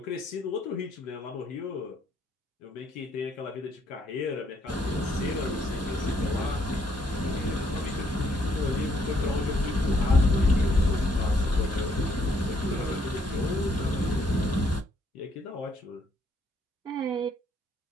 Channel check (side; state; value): both; normal; correlation 0.69